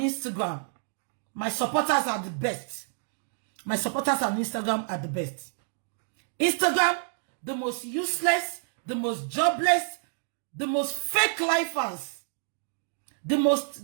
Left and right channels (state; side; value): silent; left; digital silence